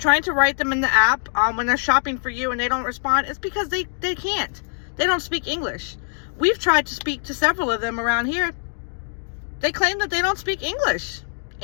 to write them in the app, when they're shopping for you and they don't respond, it's because they can't. They don't speak English. We've tried to speak to several of them around here. They claim that they don't speak English.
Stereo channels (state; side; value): silent; right; digital silence